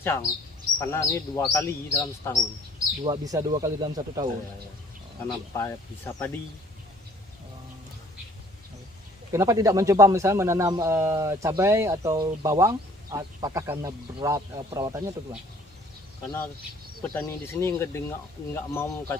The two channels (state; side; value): normal; both; correlation 0.56